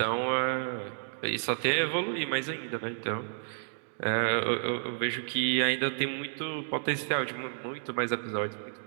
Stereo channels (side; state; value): left; silent; digital silence